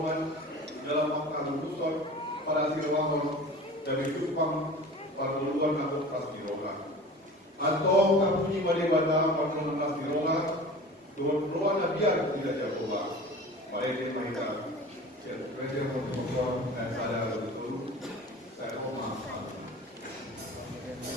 dalam makna lutusan pada sirwangon dan itupang pada luar nakut pas diroga atau kapunyi Madewata pada pas diroga Tuhan ruang biar tidak jagolah. Mari kita presiden untuk dan sadar betul. Saya mau maaf.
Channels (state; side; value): normal; both; correlation 0.39